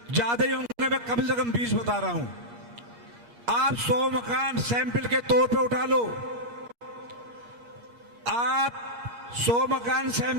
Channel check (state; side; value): late; left; 6.5 ms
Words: ज्यादा ही होंगे, मैं कम से कम 20 बता रहा हूं। आप 100 मकान सैंपल के तौर पे उठा लो, आप 100 मकान